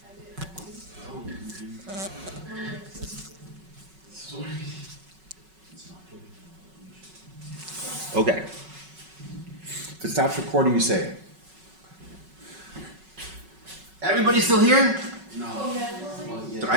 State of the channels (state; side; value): late; left; 5.3 ms